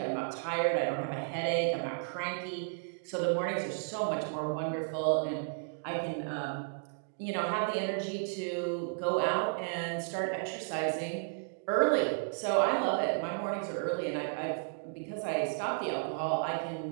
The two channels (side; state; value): left; silent; digital silence